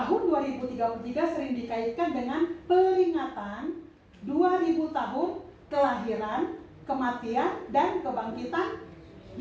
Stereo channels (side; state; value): both; identical; correlation 1.00